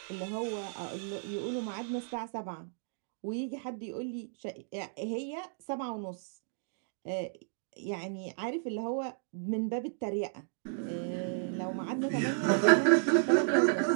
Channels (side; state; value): left; silent; digital silence